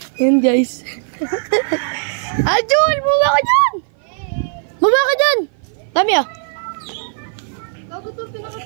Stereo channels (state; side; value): silent; left; 56 dB below the other